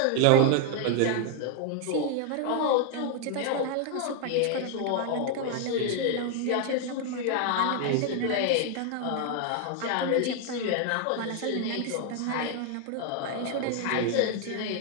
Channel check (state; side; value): different; both; correlation 0.00